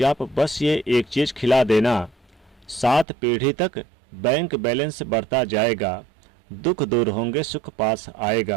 बस ये एक चीज़ खिला देना, 7 पीढ़ी तक बैंक बैलेंस बढ़ता जाएगा, दुख दूर होंगे, सुख पास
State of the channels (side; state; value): left; drops out; at 3.1 s